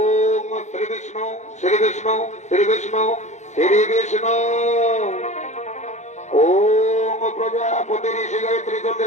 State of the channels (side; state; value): right; late; 0.34 ms